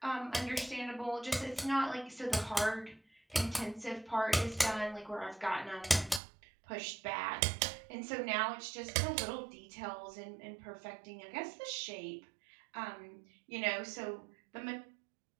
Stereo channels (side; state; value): left; drops out; at 6.2 s